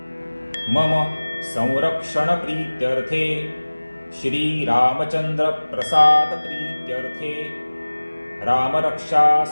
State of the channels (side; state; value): both; inverted; correlation -1.00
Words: मम संरक्षणप्रीत्यर्थे श्रीरामचन्द्रप्रसादप्रीत्यर्थे